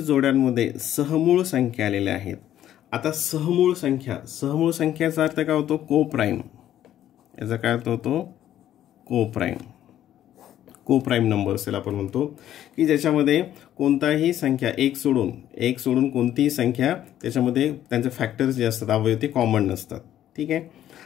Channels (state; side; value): quieter; right; 11.8 dB